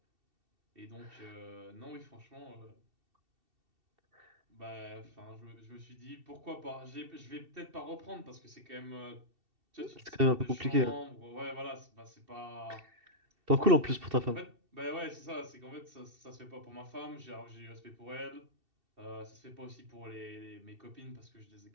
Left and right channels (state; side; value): late; left; 2.7 ms